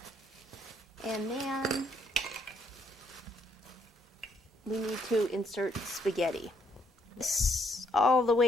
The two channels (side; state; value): both; normal; correlation 0.71